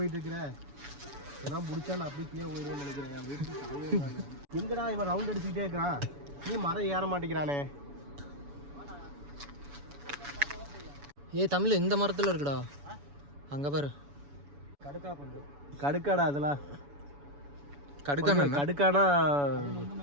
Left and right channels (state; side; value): late; left; 7.0 ms